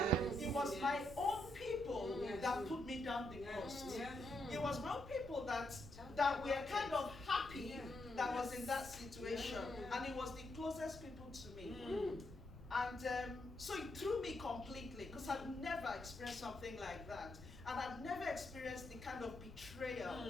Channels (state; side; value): noise; left; rumble, 17 dB below the sound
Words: Yes, it was my own people that put me down the most. It was my own people that were kind of happy that was in that situation. And it was the closest people to me. And so it threw me completely, because I'd never experienced something like that. And I'd never experienced the kind of